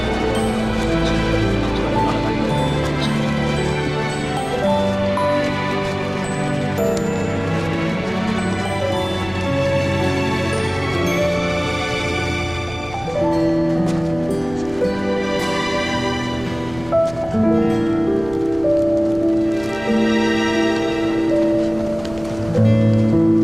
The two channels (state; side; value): noise; right; rumble, 18 dB below the sound